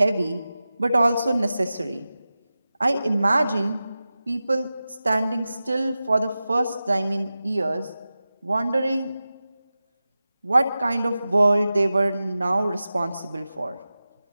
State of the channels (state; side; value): inverted; both; correlation -0.94